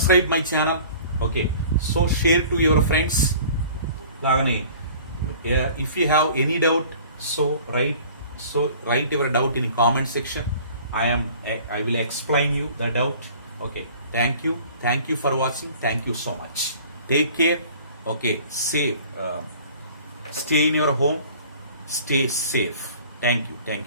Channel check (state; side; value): inverted; both; correlation -0.48